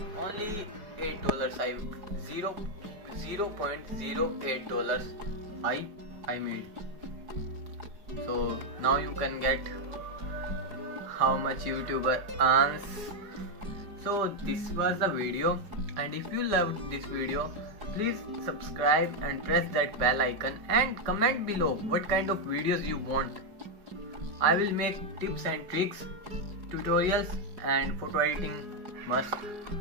only $8 $0.08 I made. So now you can get how much YouTuber earns. So this was the video, and if you loved this video, please subscribe and press that bell icon and comment below what kind of videos you want. I will make tips and tricks, tutorials and photo editing must.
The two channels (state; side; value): late; left; 4.8 ms